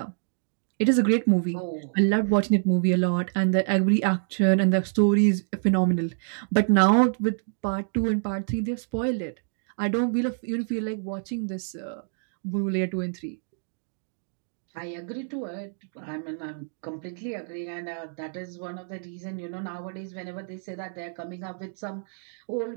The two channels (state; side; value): silent; left; digital silence